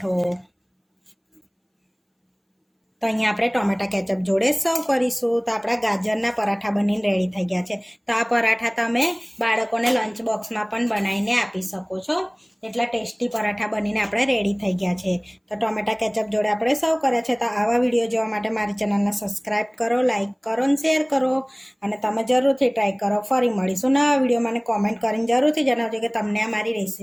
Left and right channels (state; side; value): identical; both; correlation 1.00